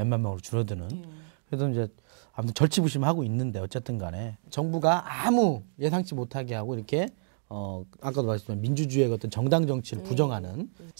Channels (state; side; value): silent; left; digital silence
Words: 명으로 줄어드는. 그래서 이제 아무튼 절치부심하고 있는데 어쨌든 간에 정부가 아무 예상치 못하게 하고 이렇게 아까도 말씀드린 민주주의의 어떤 정당 정치를 부정하는